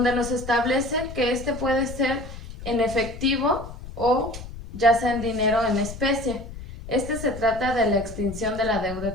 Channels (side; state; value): left; noise; rumble, 12 dB below the sound